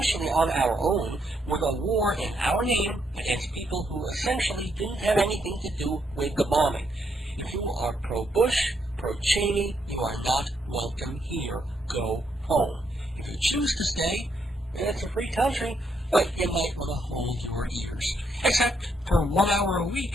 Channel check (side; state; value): both; normal; correlation 0.76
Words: on our own with a war in our name against people who essentially didn't have anything to do with the bombing. If you are pro-Bush, pro-Cheney, you are not welcome here. Go home. If you choose to stay, it's a free country, but you might want to hold your ears. Except for 1 hour a